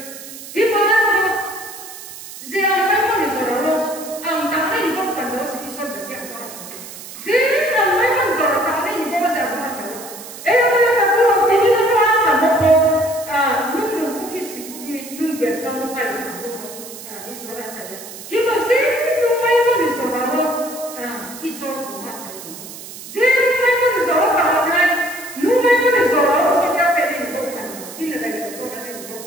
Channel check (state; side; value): noise; right; hiss, 13 dB below the sound